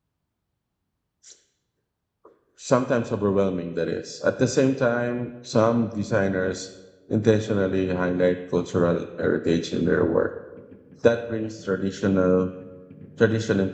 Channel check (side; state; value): both; identical; correlation 1.00